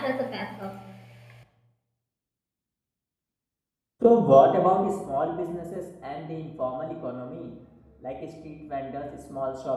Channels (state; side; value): identical; both; correlation 1.00